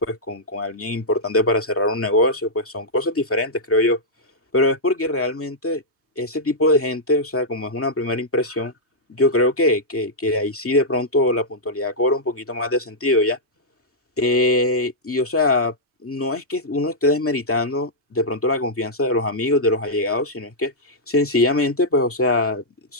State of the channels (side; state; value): both; normal; correlation -0.09